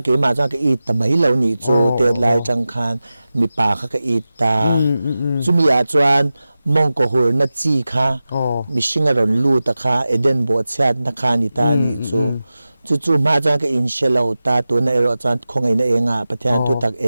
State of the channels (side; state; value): both; inverted; correlation -0.95